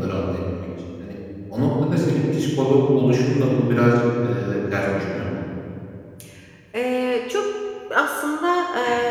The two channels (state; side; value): identical; both; correlation 1.00